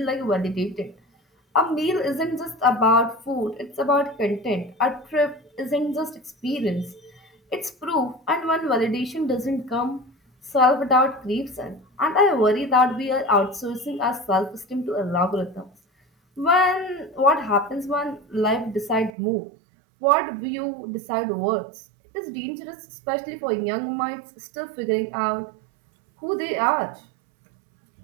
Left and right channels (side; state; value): left; drops out; at 19.1 s